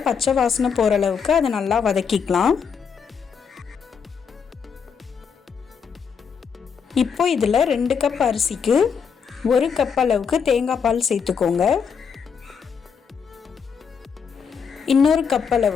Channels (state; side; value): quieter; right; 6.5 dB